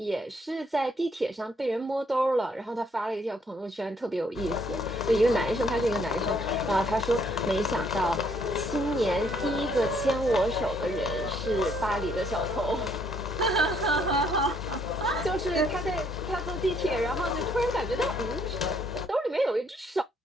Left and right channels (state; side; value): normal; both; correlation 0.68